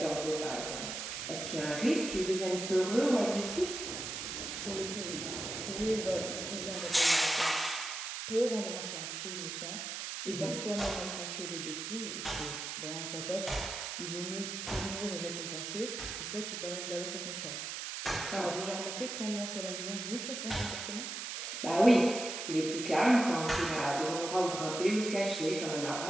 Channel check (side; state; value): right; noise; hiss, 5 dB below the sound